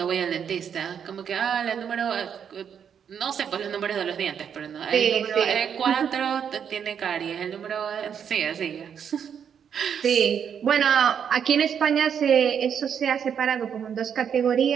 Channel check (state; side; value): quieter; left; 7.8 dB